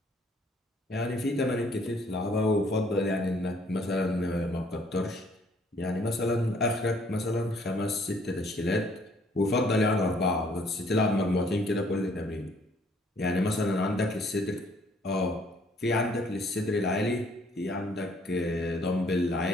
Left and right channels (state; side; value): normal; both; correlation 0.62